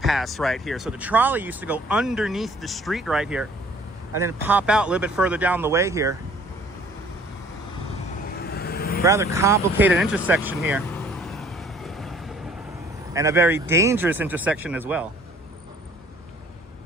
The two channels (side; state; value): both; normal; correlation 0.55